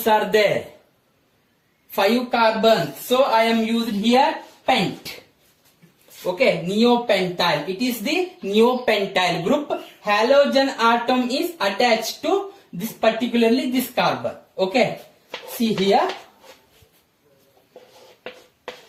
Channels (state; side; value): identical; both; correlation 1.00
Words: are there. 5 carbon. So I am used here pent. Okay, neopentyl. It is the neopentyl group. Halogen atom is attached to this, particularly this carbon. Okay, see here.